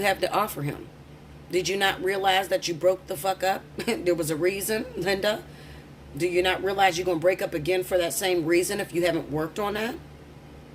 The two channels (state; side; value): identical; both; correlation 1.00